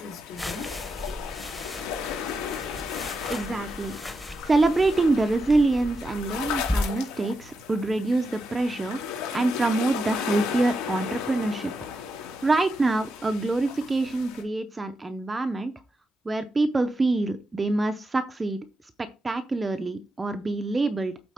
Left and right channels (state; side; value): normal; both; correlation 0.86